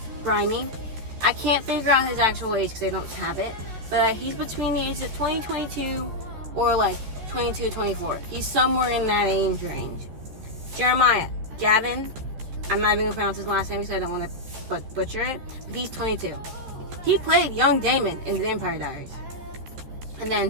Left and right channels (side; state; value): left; late; 14 ms